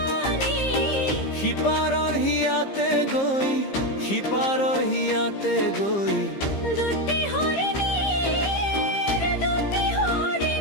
সিপারর হিয়াতে গই সিপারর হিয়াতে গই দুটি হরিণী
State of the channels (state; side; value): late; right; 15 ms